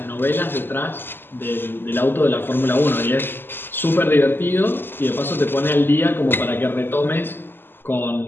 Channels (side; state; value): right; late; 0.099 ms